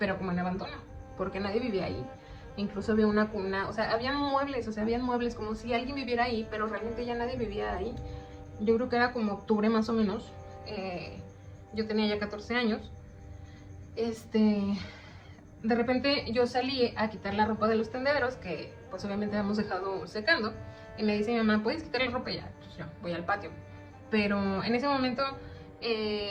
como en abandono, porque nadie vivía ahí. Incluso había una cuna, o sea, habían muebles como si alguien viviera ahí, pero realmente ya nadie vivía ahí. Yo creo que era como octubre más o menos. Yo tenía ya 14 años. De repente yo salí a quitar la ropa de los tendederos, que pues obviamente habíamos dejado secando. Y me dice mi mamá, ¿puedes quitar la ropa ya? Entonces yo voy al patio. Pero en ese momento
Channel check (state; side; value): identical; both; correlation 1.00